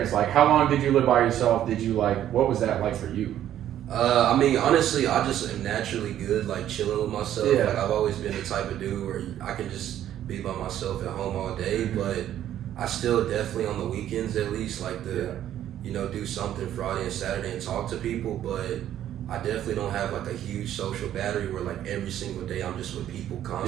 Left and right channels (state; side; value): quieter; left; 11.5 dB